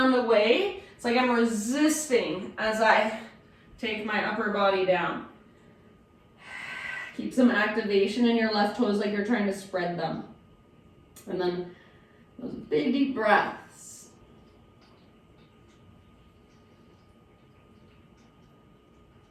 away. It's like I'm resisting as I take my upper body down. Keep some activation in your left toes like you're trying to spread them. And then those big deep breaths.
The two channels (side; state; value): both; identical; correlation 1.00